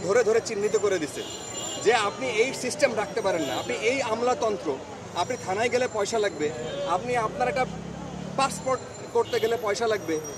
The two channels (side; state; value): both; identical; correlation 1.00